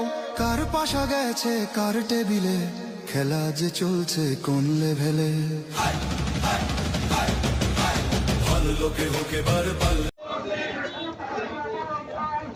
কার পাশা গেছে কার টেবিলে, খেলা যে চলছে কোন লেভেলে। ভালো লোকে হোকে বার পাল্লে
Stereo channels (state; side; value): identical; both; correlation 1.00